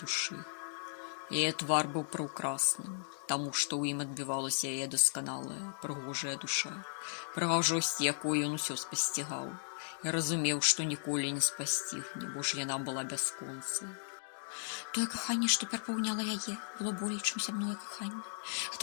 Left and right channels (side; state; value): right; silent; digital silence